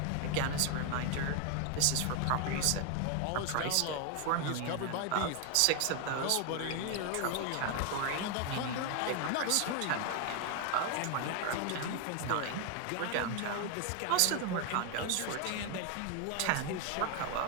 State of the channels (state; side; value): different; both; correlation 0.01